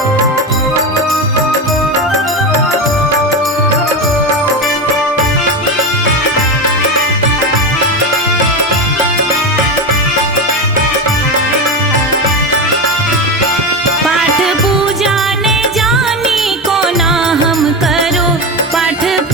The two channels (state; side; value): normal; both; correlation 0.18